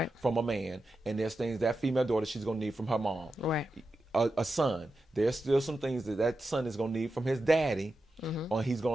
from a man, and there's things that female daughter she's going to need from her mom. Right. A son, there's still some things that son is going to need from his daddy, or he's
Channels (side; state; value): both; normal; correlation 0.90